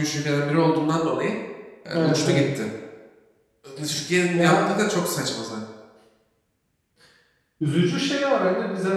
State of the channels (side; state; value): both; identical; correlation 1.00